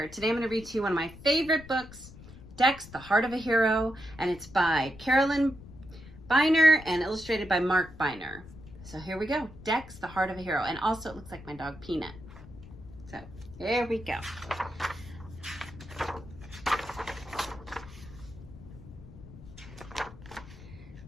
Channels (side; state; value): left; noise; rumble, 17 dB below the sound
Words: Today I'm going to read to you one of my favorite books, Dex, The Heart of a Hero, and it's by Carolyn Biner and illustrated by Mark Biner. So here we go, Dex, The Heart of a Hero, and also it looks like my dog Peanut. So here we go.